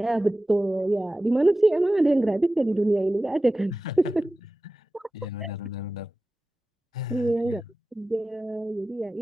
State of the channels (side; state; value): both; normal; correlation 0.96